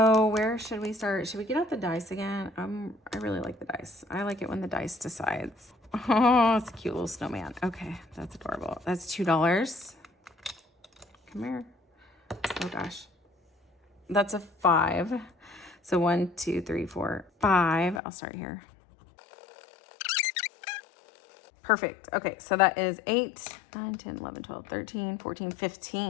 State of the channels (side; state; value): right; drops out; at 18.0 s